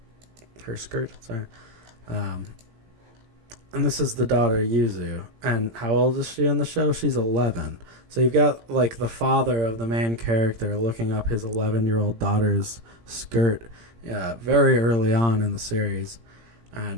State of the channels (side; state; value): left; late; 17 ms